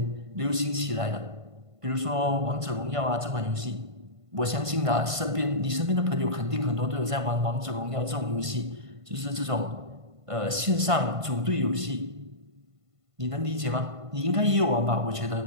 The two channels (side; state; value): left; late; 1.5 ms